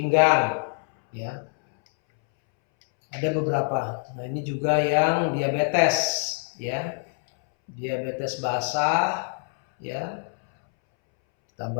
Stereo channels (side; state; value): right; silent; 62 dB below the other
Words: ya, ada beberapa. Nah, ini juga yang diabetes ya, diabetes basah ya,